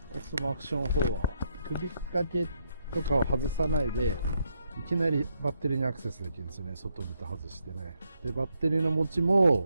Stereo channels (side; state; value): both; inverted; correlation -0.77